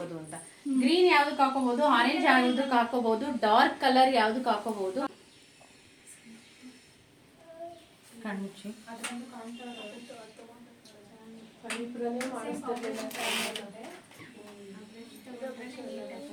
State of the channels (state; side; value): identical; both; correlation 1.00